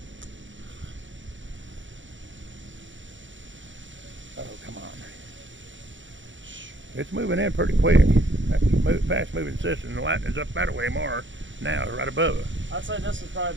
Oh, come on. It's moving in pretty quick. That's a fast moving system. The lightning's up that way more now, right above it. I'd say this is probably a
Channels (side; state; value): left; late; 0.55 ms